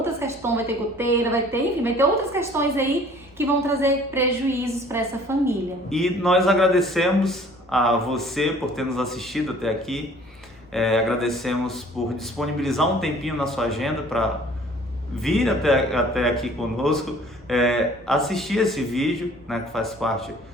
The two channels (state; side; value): normal; both; correlation 0.52